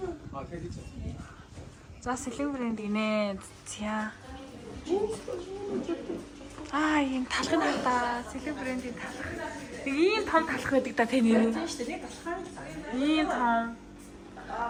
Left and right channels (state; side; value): identical; both; correlation 1.00